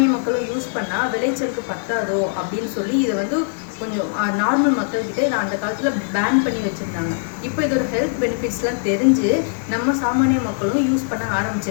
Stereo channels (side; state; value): right; silent; digital silence